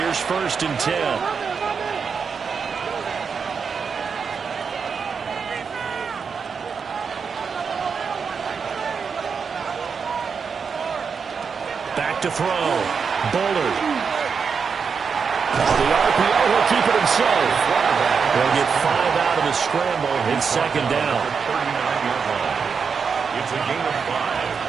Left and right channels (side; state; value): left; quieter; 5.9 dB